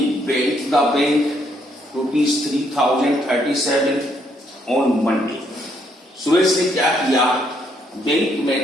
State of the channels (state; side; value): normal; both; correlation 0.72